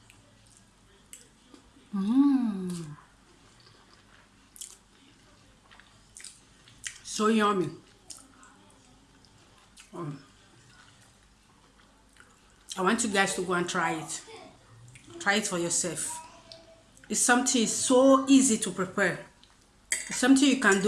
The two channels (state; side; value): identical; both; correlation 1.00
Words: so yummy. I want you guys to go and try it. Try it for yourself. It's something so easy to prepare. It's something you can